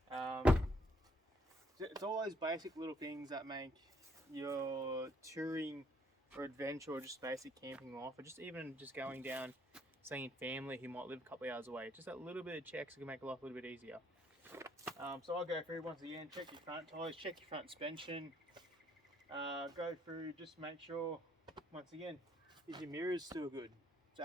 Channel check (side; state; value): both; normal; correlation 0.67